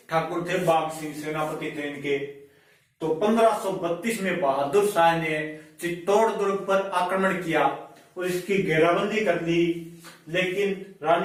ठाकुर थे, बाघ सिंह सेनापति थे इनके। तो 1532 में बहादुर शाह ने चित्तौड़ दुर्ग पर आक्रमण किया और इसकी घेराबंदी कर ली, लेकिन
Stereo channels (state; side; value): identical; both; correlation 1.00